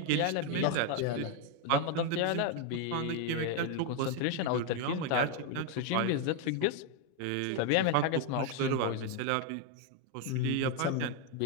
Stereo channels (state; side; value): different; both; correlation 0.01